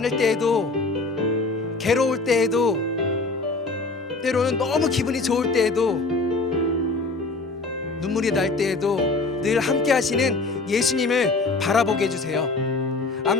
때에도, 괴로울 때에도, 때로는 너무 기분이 좋을 때에도, 눈물이 날 때에도 늘 함께 하시는 예수님을 바라보게 해주세요.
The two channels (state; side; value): quieter; right; 3.6 dB